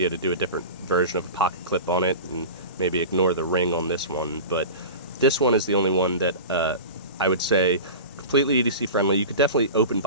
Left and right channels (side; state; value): both; inverted; correlation -0.32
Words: to do a different version of a pocket clip on it and maybe ignore the ring on this one. But this one is the only one that I would say completely EDC friendly. You could definitely open